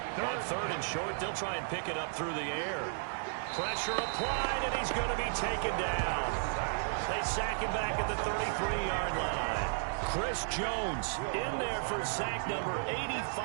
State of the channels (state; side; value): silent; left; digital silence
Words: on 3rd and short. They'll try and pick it up through the air. Pressure applied, and he's going to be taken down. They sack him back at the 33-yard line. Chris Jones in there for sack number